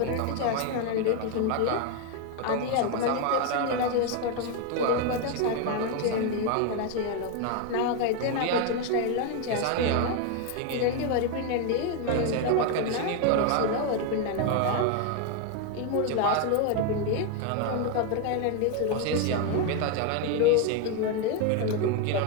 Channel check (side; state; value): both; different; correlation 0.01